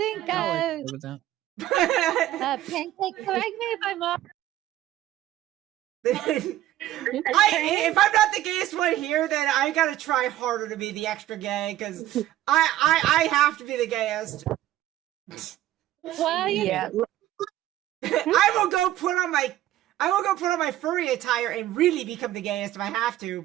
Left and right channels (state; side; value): quieter; left; 13.9 dB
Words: I'll agree with that. Pancake, correct me if I'm wrong. If I'm not the gayest one here, then I gotta try harder to be the extra gay because I have to be the gayest. Well, Yeah. I will go put on my furry attire and really become the gayest if I have